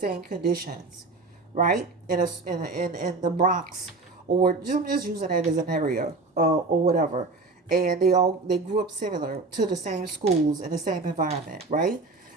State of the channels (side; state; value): left; quieter; 3.7 dB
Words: conditions, right? In the Bronx, or I'm just using that as an area, or whatever. And they grew up similar to the same schools in the same environment, right?